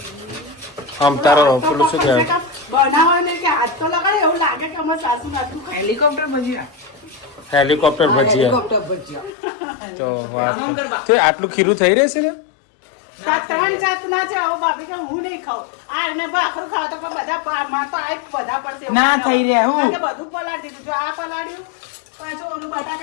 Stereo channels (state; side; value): drops out; right; at 9.3 s